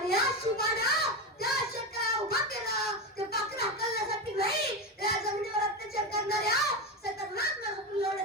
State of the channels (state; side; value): normal; both; correlation 0.16